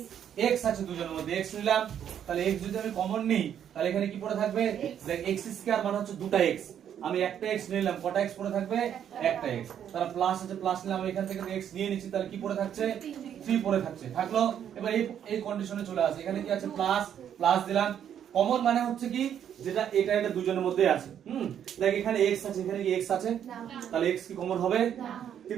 x আছে দুজনের মধ্যে x নিলাম তাহলে x যদি আমি কমন নিই তাহলে এখানে কি পড়ে থাকবে দেখ x স্কয়ার মানে হচ্ছে দুটো x আমি একটা x নিলাম কটা x পড়ে থাকবে একটা x তাহলে প্লাস আছে প্লাস নিলাম আমি এখান থেকে x নিয়ে নিচ্ছি তাহলে কি পড়ে থাকছে 3 পড়ে থাকছে থাকলো এবার এই কন্ডিশনে চলে আসে এখানে কি আছে প্লাস প্লাস দিলাম কমন মানে হচ্ছে কি যেটা এটা দুজনের মধ্যে আছে দেখ এখানে x আছে এখানে কি x আছে তাহলে x কি কমন হবে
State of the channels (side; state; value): left; quieter; 9.4 dB